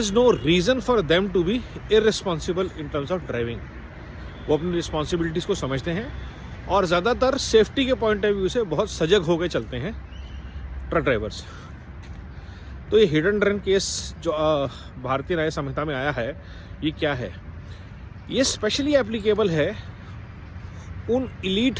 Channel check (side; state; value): both; identical; correlation 1.00